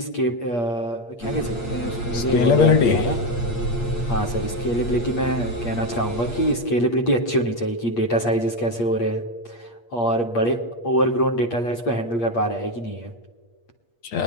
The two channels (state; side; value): late; right; 8.5 ms